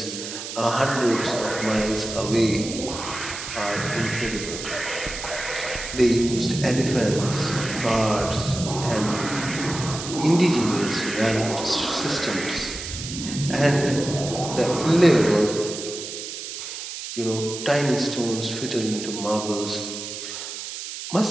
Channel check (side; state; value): right; noise; hiss, 8 dB below the sound